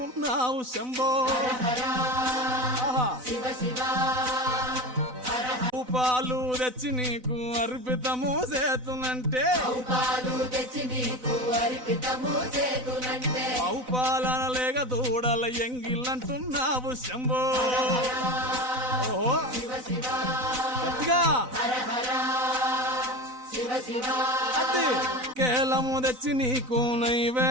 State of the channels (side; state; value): left; late; 4.0 ms